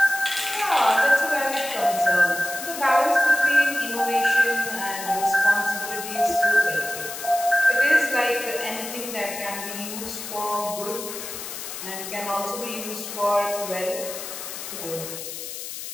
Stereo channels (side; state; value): left; noise; hiss, 8 dB below the sound